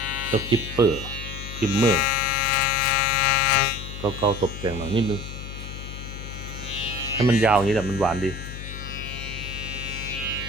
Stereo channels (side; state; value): left; noise; hum, 10 dB below the sound